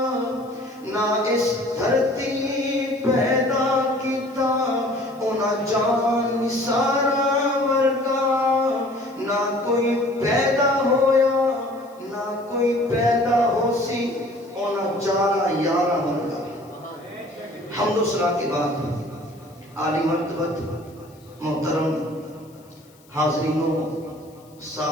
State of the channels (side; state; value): left; noise; hiss, 30 dB below the sound